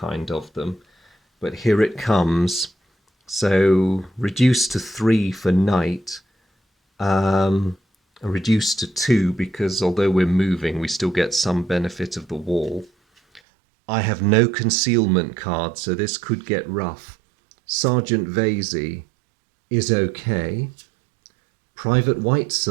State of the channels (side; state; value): left; drops out; at 13.4 s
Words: of them. But here it comes. So reduced to 3 for night, reduced to 2 because although we're moving, we still get some benefit of the wall. I have no concealment card, so this could get rough. Sergeant Vasey is okay. Private